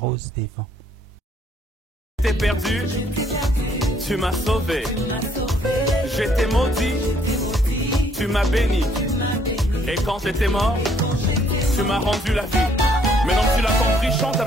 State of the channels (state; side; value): normal; both; correlation 0.66